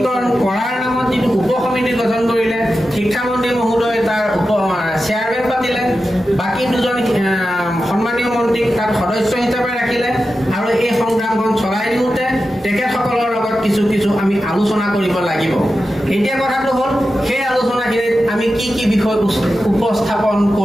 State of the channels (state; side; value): normal; both; correlation 0.91